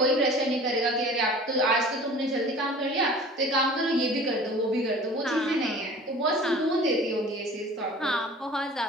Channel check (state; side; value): normal; both; correlation 0.44